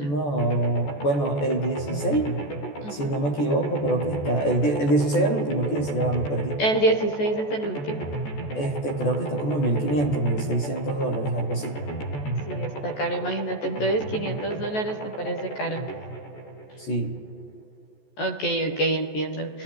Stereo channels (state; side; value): late; right; 14 ms